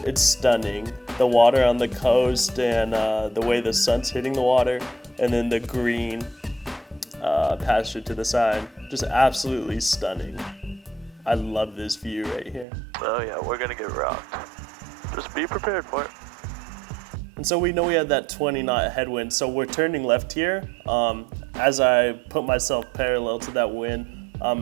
stunning. The water on the coast and the way the sun's hitting the water, and then the green that pasture to the side. Just absolutely stunning. I love this view right here. Oh yeah, we're gonna get rocked. Just be prepared for it. And so we know we had that 20 knot headwind, so we're turning left here. As I put myself parallel to that wind,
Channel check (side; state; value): left; drops out; at 12.7 s